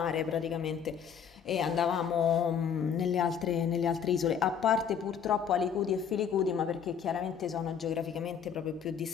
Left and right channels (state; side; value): quieter; right; 7.5 dB